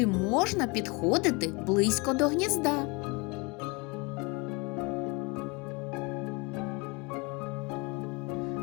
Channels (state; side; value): quieter; right; 28.2 dB